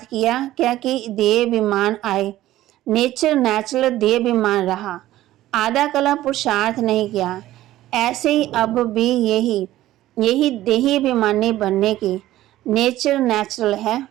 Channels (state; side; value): quieter; left; 14.8 dB